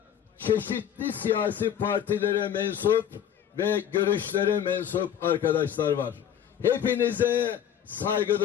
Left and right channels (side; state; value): right; quieter; 9.4 dB